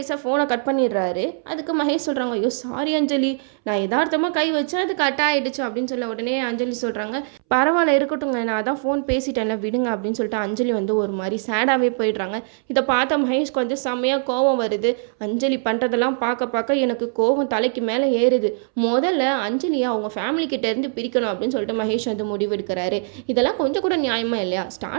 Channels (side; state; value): left; silent; 64 dB below the other